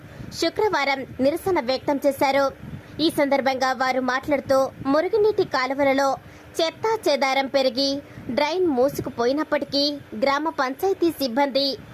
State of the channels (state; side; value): identical; both; correlation 1.00